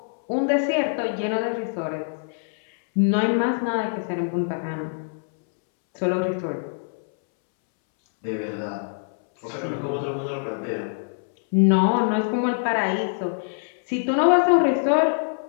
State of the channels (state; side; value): silent; right; 63 dB below the other